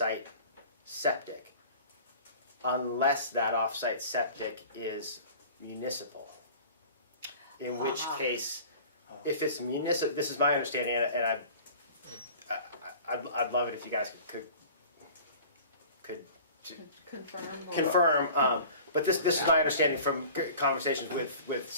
septic, unless that off-site septic is municipal. In which case, if it's municipal, this is my understanding, and I'd love it if you guys could confirm. But this is my understanding from conversations with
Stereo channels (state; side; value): inverted; both; correlation -0.43